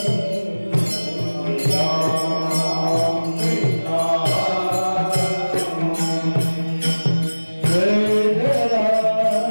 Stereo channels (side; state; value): both; inverted; correlation -1.00